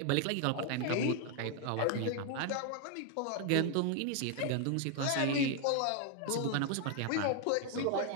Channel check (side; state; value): both; different; correlation 0.00